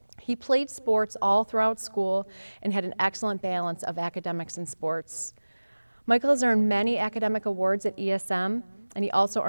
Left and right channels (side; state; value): both; inverted; correlation -1.00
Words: He played sports all throughout school and had an excellent balance of academics and sports. Michael has earned many academic awards at ESM, and he also